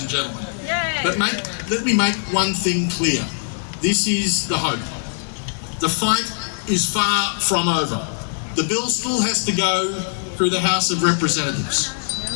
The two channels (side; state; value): right; silent; digital silence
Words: and gentlemen. But let me make one thing clear. This is the hope. The fight is far from over. The bill still has to go through the House of Representatives.